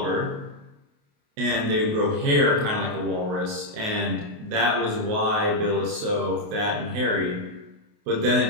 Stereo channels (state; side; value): late; left; 28 ms